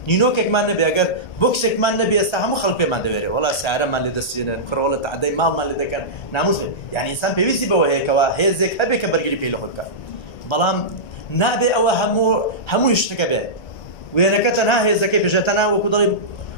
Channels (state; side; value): late; right; 1.3 ms